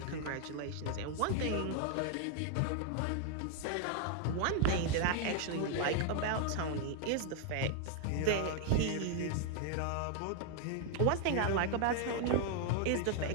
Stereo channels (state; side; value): different; both; correlation 0.00